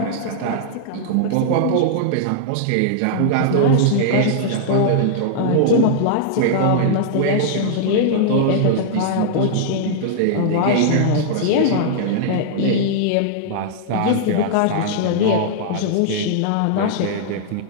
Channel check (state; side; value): different; both; correlation -0.01